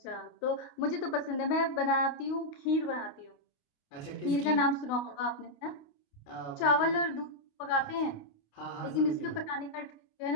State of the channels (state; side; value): late; right; 28 ms